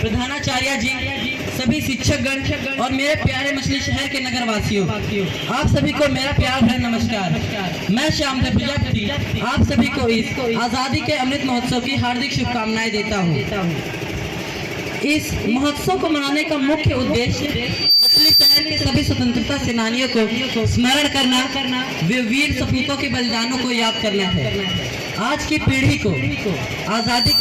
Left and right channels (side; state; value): both; identical; correlation 1.00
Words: प्रधानाचार्य जी, सभी शिक्षकगण और मेरे प्यारे मछली शहर के नगर वासियों, आप सभी को मेरा प्यार भरा नमस्कार। मैं श्यामधर प्रजापति आप सभी को इस आज़ादी के अमृत महोत्सव की हार्दिक शुभकामनाएं देता हूँ। इस महोत्सव को मनाने का मुख्य उद्देश्य मछली शहर के सभी स्वतंत्रता सेनानियों को स्मरण करना, वे वीर सपूतों के बलिदानों को याद करना है। आज की पीढ़ी को आज़ादी